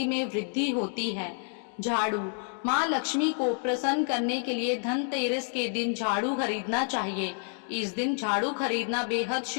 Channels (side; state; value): right; silent; 56 dB below the other